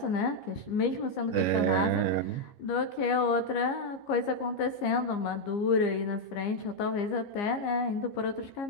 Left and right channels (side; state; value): right; late; 15 ms